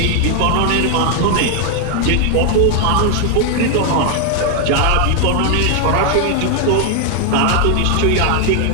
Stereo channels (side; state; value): both; different; correlation 0.00